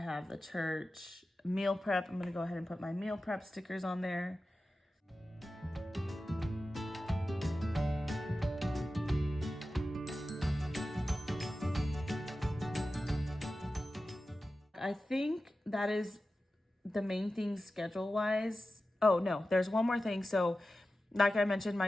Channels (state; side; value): normal; both; correlation 0.94